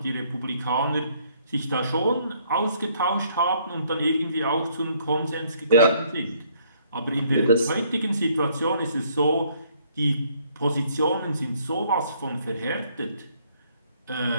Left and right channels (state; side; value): inverted; both; correlation -0.65